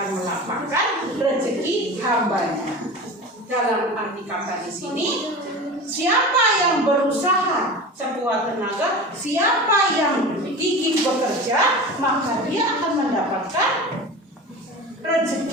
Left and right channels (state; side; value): normal; both; correlation 0.32